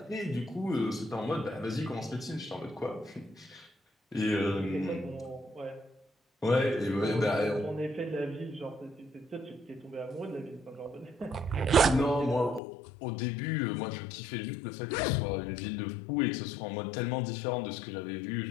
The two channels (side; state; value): right; drops out; at 12.6 s